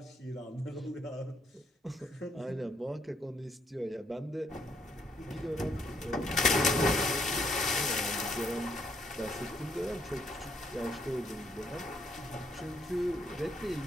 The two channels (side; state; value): both; normal; correlation 0.72